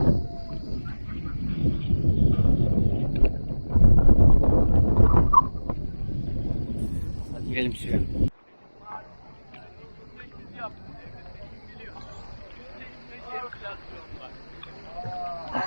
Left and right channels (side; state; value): both; inverted; correlation -1.00